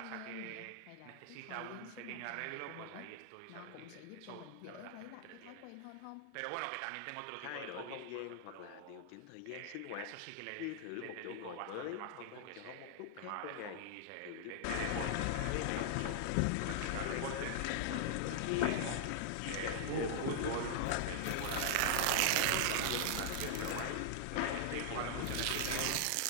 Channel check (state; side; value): different; both; correlation -0.01